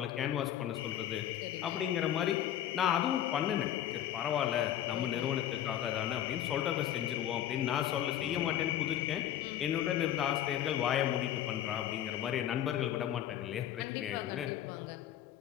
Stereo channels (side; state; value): right; quieter; 11.3 dB